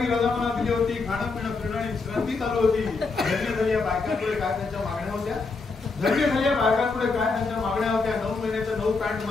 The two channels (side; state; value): right; quieter; 4.1 dB